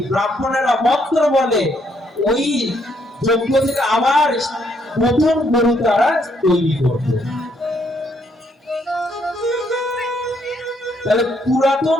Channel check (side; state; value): both; normal; correlation 0.71